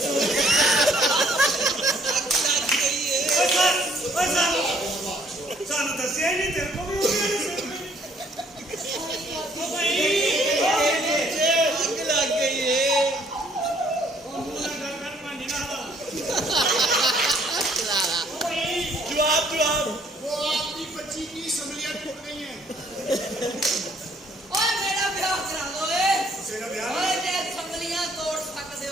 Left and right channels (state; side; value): normal; both; correlation 0.63